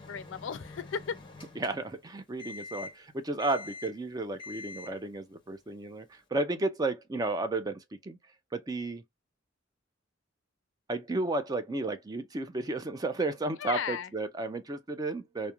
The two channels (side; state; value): both; normal; correlation 0.35